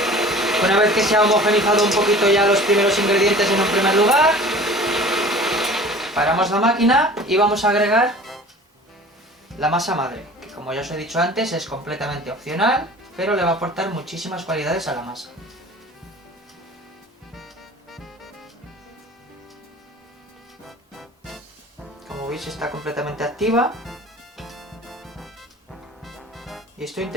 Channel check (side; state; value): both; normal; correlation 0.43